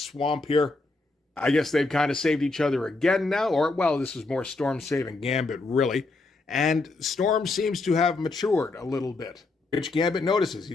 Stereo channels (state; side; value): quieter; right; 3.4 dB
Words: here. I guess they've kind of saved each other again now, or, well, this is more Storm saving Gambit, really. And Storm seems to have matured a little bit, which Gambit notices. He